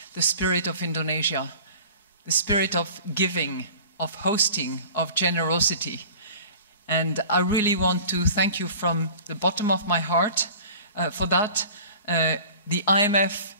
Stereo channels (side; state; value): both; inverted; correlation -0.43